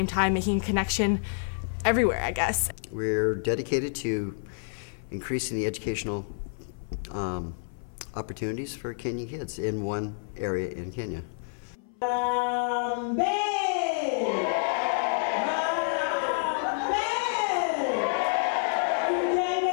time, making a connection everywhere, I guess. We're dedicated to increasing the educational opportunities for Kenyan kids in one area in Kenya.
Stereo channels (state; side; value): silent; right; 59 dB below the other